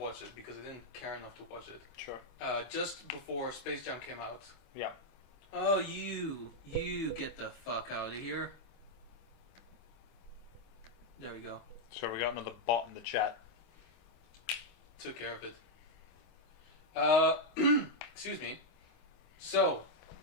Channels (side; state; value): right; late; 26 ms